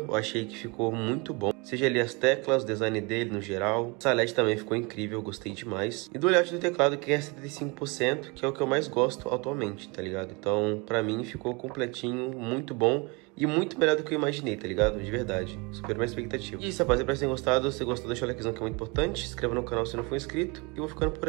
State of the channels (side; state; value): left; quieter; 28.8 dB